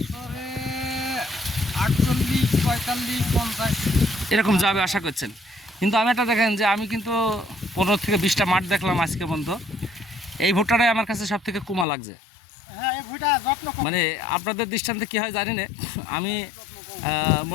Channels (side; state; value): right; drops out; at 11.9 s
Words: বছরে 48, 45, 50 এরকম যাবে আশা করছেন? কিন্তু আমি একটা দেখেন যে আমি কিন্তু 15 থেকে 20টা মাঠ দেখলাম আজকে পর্যন্ত। এই ভুট্টাটাই আমার কাছে সব থেকে কুমা লাগছে। হ্যাঁ, এই ভুট্টা যত্ন কম। মানে আপনাদের দৃষ্টান্তে কী হয় জানি না, আমি